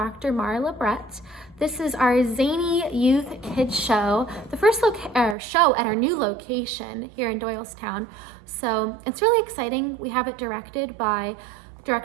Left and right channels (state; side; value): drops out; left; at 5.4 s